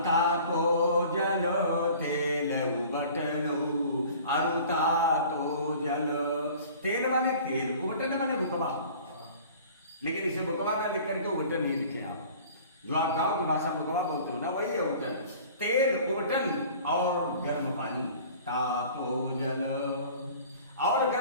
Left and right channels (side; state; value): both; inverted; correlation -0.46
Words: तो जल, तेल बटनऊ अरुता तो जल। तेल माने तेल, उबटन माने बुकवा, लेकिन इसे बुकवा ना लिख करके उबटन नहीं लिखे आप। जो आप गांव की भाषा बुकवा बोलते हो ना, वही है उबटन। तेल, उबटन और गर्म पानी, तापो जल, और